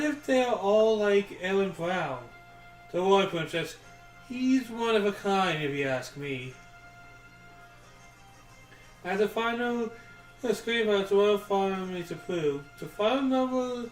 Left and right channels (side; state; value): both; identical; correlation 1.00